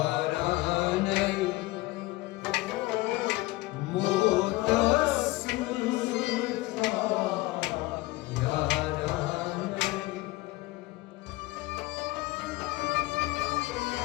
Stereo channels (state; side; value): quieter; right; 20.0 dB